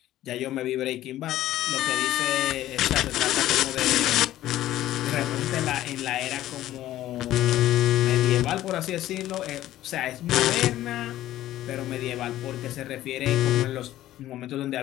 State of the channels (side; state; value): right; quieter; 14.0 dB